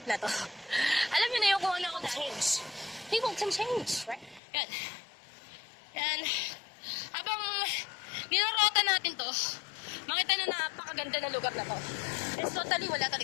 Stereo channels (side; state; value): right; drops out; at 4.4 s